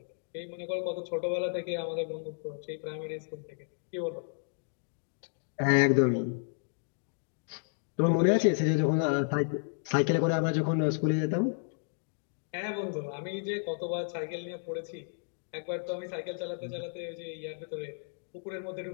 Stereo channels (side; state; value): right; silent; digital silence